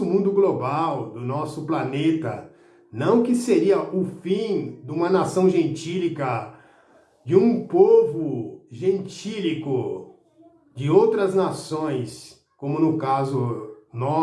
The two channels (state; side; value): identical; both; correlation 1.00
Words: mundo global, do nosso planeta. Não que seria o fim de uma nação gentílica, de um povo gentílico, de outras nações, como no caso